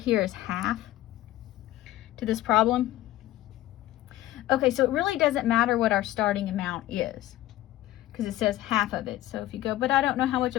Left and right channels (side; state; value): right; quieter; 15.2 dB